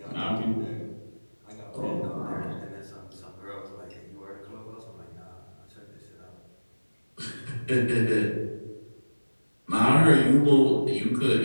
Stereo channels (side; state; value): both; inverted; correlation -1.00